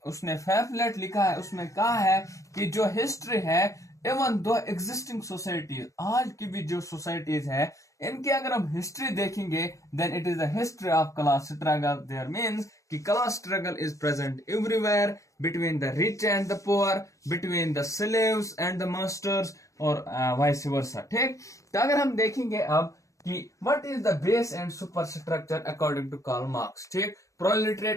उसने pamphlet लिखा है, उसमें कहा है कि जो हिस्ट्री है इवन दो एग्जिस्टिंग सोसाइटीज, आज की भी जो सोसाइटीज है इनकी अगर हम हिस्ट्री देखेंगे then it is the history of class struggle. There means कि class struggle is present everywhere between the rich and the poor, between the slaves and the masters और वाइस वर्सा. ठीक, तो अगर हम देखेंगे अब कि what is the base and super structure according to Karl Marx. ठीक,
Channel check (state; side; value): late; right; 0.16 ms